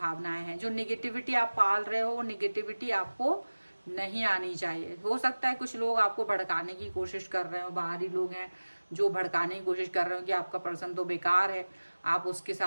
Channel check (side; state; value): both; inverted; correlation -1.00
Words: हैं। जो निगेटिविटी आप पाल रहे हो, वो निगेटिविटी आपको नहीं आनी चाहिए। हो सकता है कुछ लोग आपको भड़काने की कोशिश कर रहे हो, बाहरी लोग हैं जो भड़काने की कोशिश कर रहे हो कि आपका पर्सन तो बेकार है, आप उसके